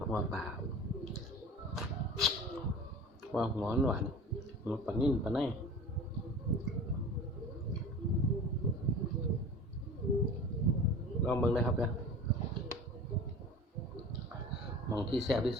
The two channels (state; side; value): normal; both; correlation 0.38